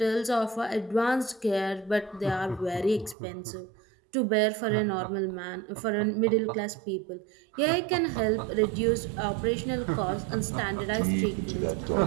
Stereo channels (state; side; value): drops out; left; at 3.2 s